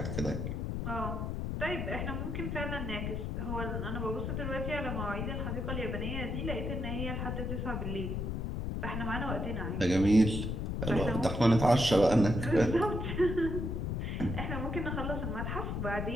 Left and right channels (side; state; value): left; noise; rumble, 2 dB below the sound